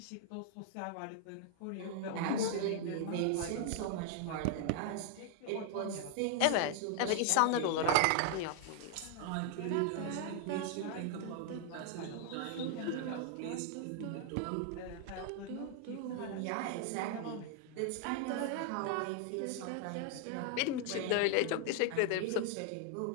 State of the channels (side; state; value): both; different; correlation 0.00